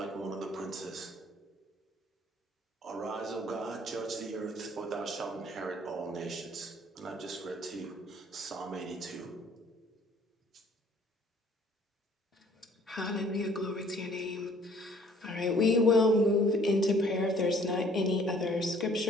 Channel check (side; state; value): both; normal; correlation 0.57